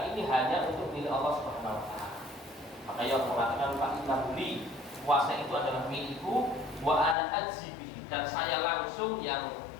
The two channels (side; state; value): right; drops out; at 7.2 s